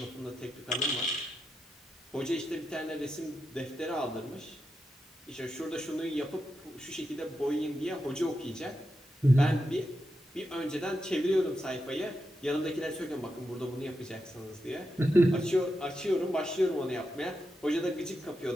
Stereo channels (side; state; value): both; normal; correlation 0.87